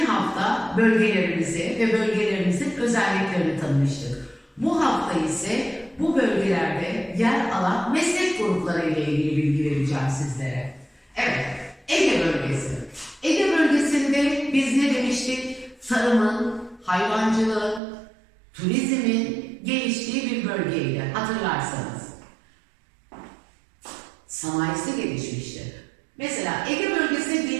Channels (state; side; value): drops out; left; at 17.8 s